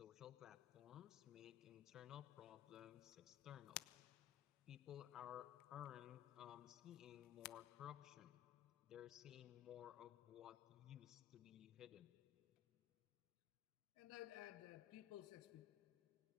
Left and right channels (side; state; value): right; quieter; 12.1 dB